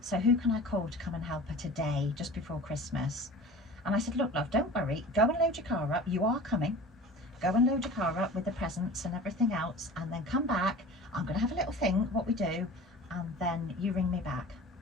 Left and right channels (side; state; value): both; normal; correlation 0.39